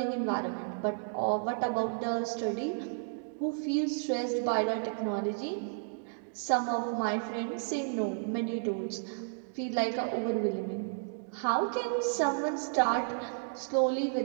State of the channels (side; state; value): left; silent; digital silence